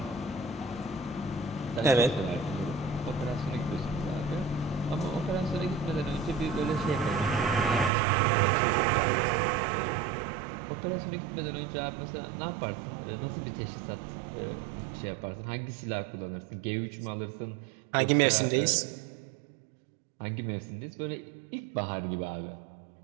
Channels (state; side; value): drops out; left; at 7.9 s